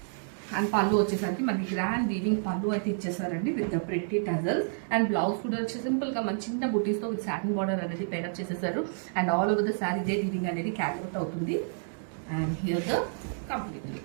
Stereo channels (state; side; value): silent; left; digital silence